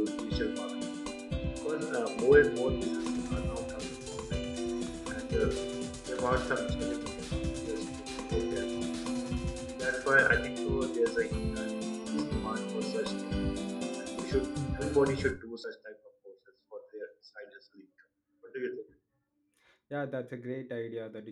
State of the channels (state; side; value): identical; both; correlation 1.00